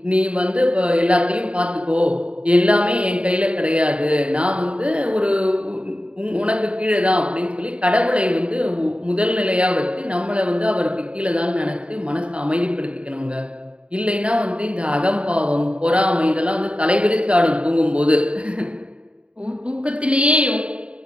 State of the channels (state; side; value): late; left; 0.059 ms